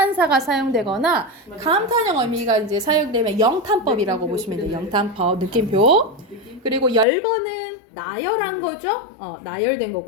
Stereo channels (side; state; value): right; drops out; at 7.1 s